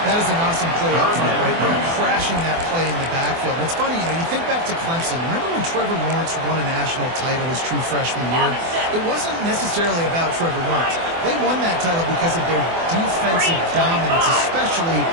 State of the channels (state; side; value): late; left; 24 ms